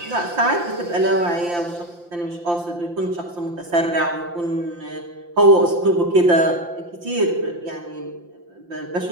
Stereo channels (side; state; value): left; late; 5.8 ms